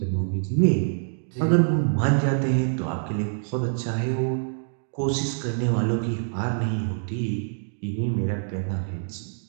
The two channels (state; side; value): silent; left; digital silence